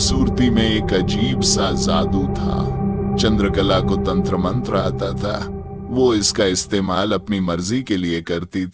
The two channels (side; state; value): both; identical; correlation 1.00